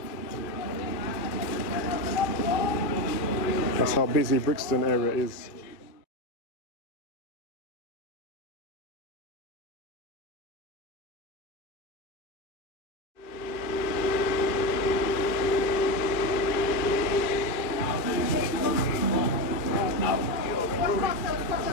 That's how busy Brixton area is.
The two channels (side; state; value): right; late; 2.3 ms